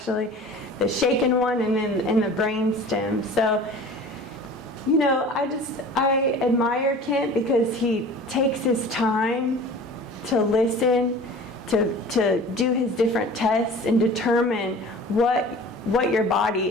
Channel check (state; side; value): normal; both; correlation 0.42